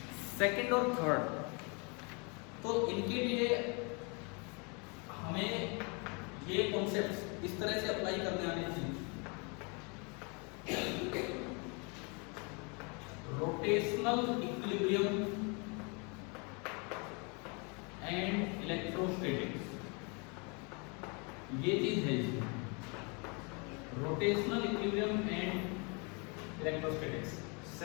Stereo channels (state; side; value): quieter; right; 32.7 dB